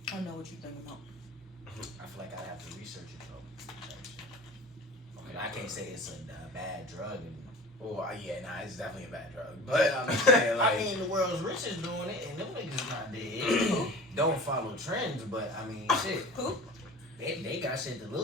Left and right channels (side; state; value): both; normal; correlation 0.38